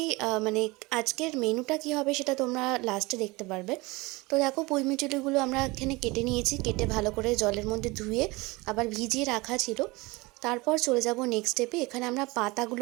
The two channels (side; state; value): left; quieter; 23.2 dB